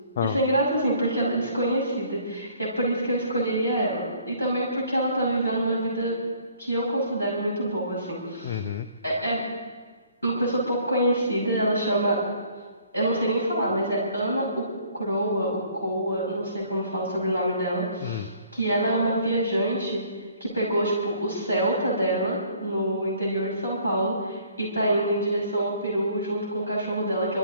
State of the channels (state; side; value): inverted; both; correlation -0.59